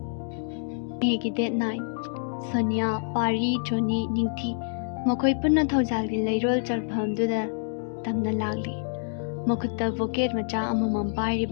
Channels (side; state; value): right; silent; digital silence